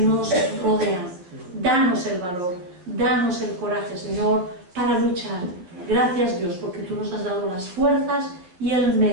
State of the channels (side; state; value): left; late; 11 ms